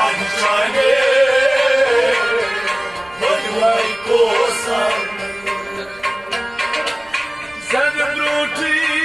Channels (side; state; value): right; noise; rumble, 27 dB below the sound